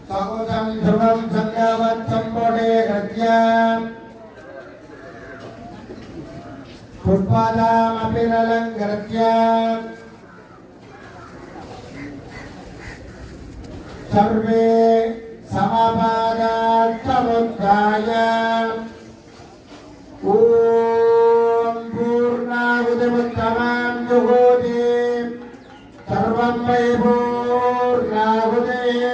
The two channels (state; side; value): identical; both; correlation 1.00